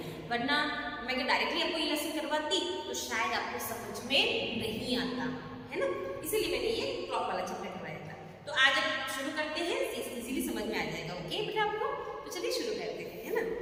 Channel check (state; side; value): identical; both; correlation 1.00